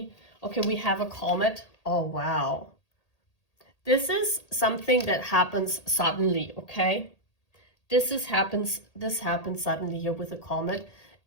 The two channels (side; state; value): right; late; 1.8 ms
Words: Okay, we have a comet. Oh, wow. This is something that happens suddenly, okay? This happens suddenly here with a comet.